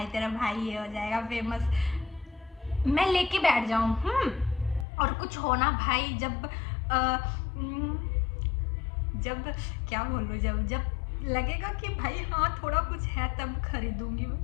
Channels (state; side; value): drops out; right; at 4.9 s